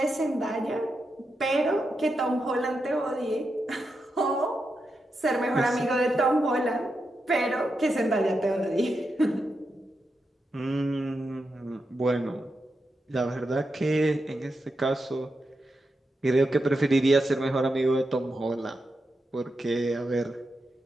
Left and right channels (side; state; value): both; normal; correlation 0.87